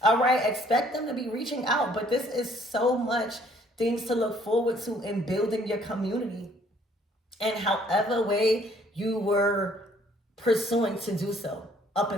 All right, expect them to be reaching out, but this is so much things to look forward to in building your community, and however way you were pursuing to do so up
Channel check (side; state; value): both; normal; correlation 0.61